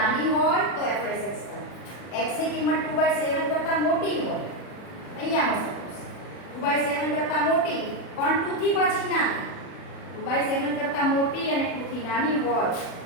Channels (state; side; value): late; right; 40 ms